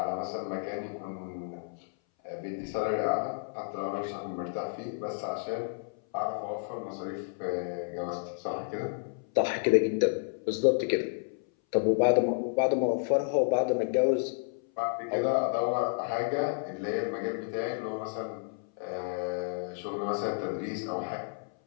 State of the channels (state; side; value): silent; right; 57 dB below the other